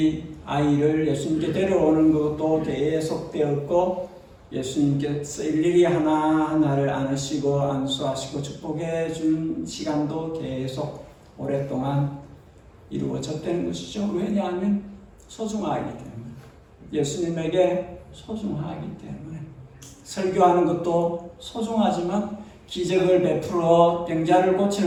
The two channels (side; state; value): both; identical; correlation 1.00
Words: 아이를 예수님께 데려오는 것도 계속되었고 예수님께서 일일이 하나하나를 안으시고 안수하시고 축복해 준 시간도 계속 오랫동안 이루어졌다는 것이죠. 왜냐하면 소중하기 때문에, 예수님에게 소중하기 때문에. 설교하는 것도 소중하지만, 기적을 베풀어 병자를